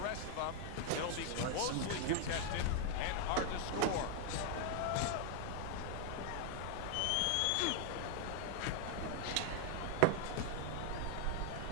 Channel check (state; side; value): different; both; correlation 0.00